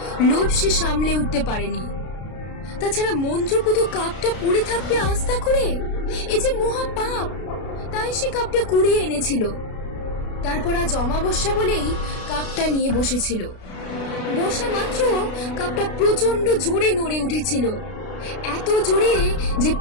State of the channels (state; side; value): late; right; 33 ms